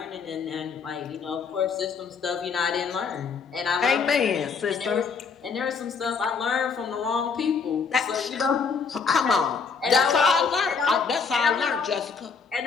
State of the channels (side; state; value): right; quieter; 5.4 dB